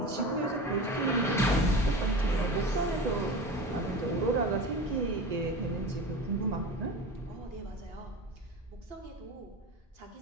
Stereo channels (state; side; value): normal; both; correlation 0.31